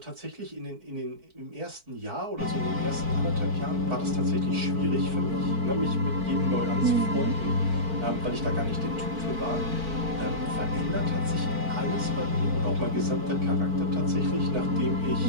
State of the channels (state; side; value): late; left; 4.5 ms